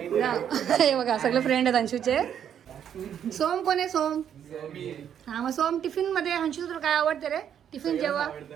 बघा. हे बघा सगळे फ्रेंड आहेत अंशूचे. सोम कोण आहे? सोम. हा मग सोम टिफिन मध्ये अंशू तुला काय आवडते रे? टिफिन जेव्हा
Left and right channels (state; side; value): quieter; left; 9.1 dB